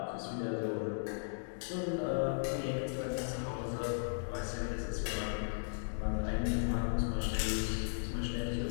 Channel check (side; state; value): right; silent; digital silence